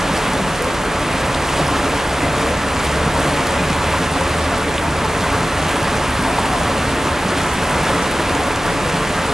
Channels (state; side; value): normal; both; correlation 0.95